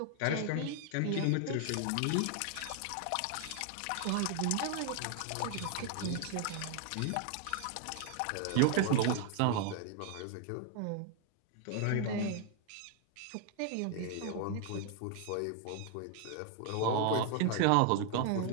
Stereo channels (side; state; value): both; different; correlation 0.00